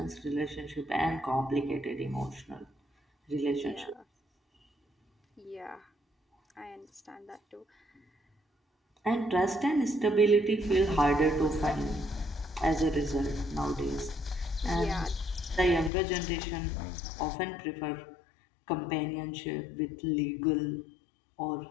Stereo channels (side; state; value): right; drops out; at 15.9 s